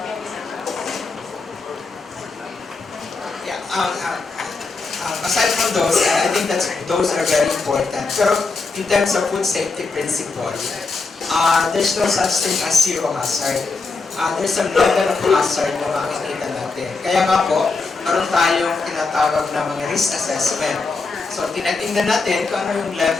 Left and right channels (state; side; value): quieter; right; 4.1 dB